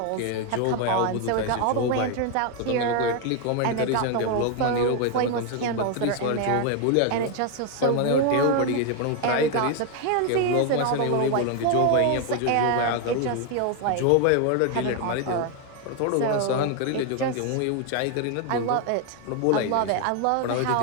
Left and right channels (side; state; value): both; different; correlation 0.01